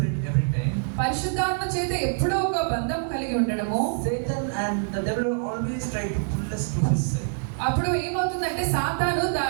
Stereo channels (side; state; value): left; silent; 61 dB below the other